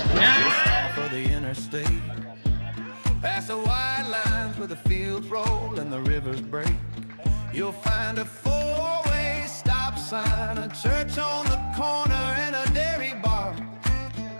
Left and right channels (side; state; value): both; inverted; correlation -1.00